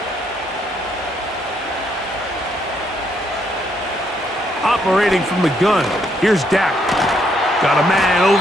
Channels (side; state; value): both; normal; correlation 0.73